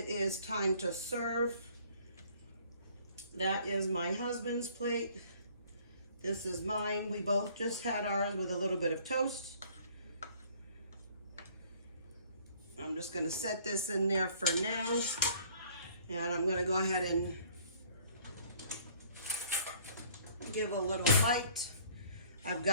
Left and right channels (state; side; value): inverted; both; correlation -0.56